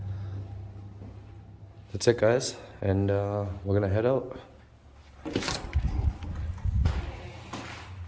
That's it, guys, and we're gonna head out.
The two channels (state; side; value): identical; both; correlation 1.00